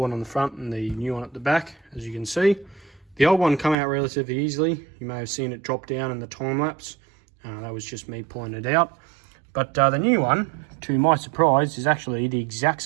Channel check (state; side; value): drops out; left; at 3.8 s